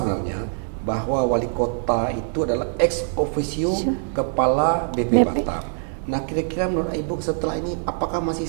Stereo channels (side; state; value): left; silent; digital silence